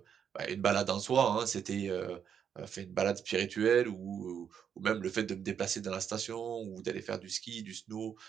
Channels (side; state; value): left; quieter; 7.9 dB